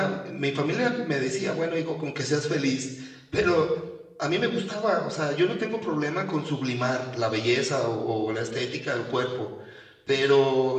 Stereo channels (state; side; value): identical; both; correlation 1.00